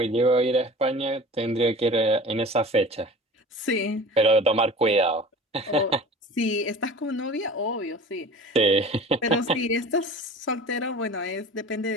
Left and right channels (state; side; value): normal; both; correlation 0.40